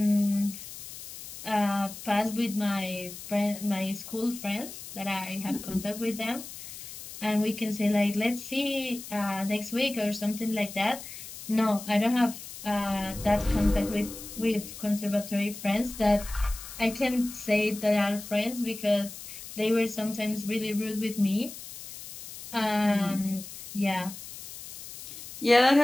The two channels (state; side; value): noise; left; hiss, 13 dB below the sound